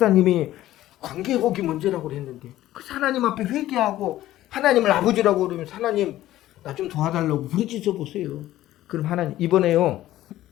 관계 회복이 문제라고 그랬는데 그래서 하나님 앞에 회개하고 하나님을 아버지라고 그러면 하나님 나 좀 도와달라고 부르짖어 보세요. 그럼 하나님 이번에요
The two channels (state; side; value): quieter; right; 14.5 dB